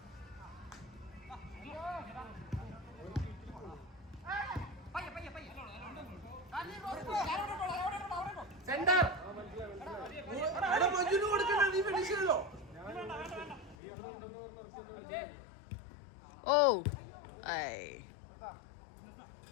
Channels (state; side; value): drops out; right; at 13.8 s